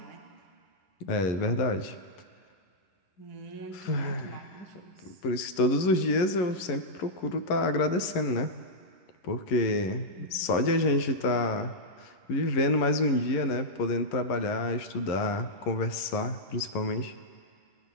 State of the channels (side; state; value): right; late; 11 ms